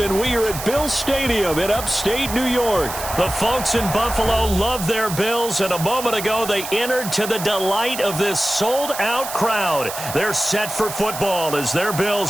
we are at Bill Stadium in upstate New York. The folks in Buffalo love their Bills, and a moment ago they entered to the delight of this sold-out crowd. They're set for football as their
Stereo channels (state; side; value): noise; right; hiss, 8 dB below the sound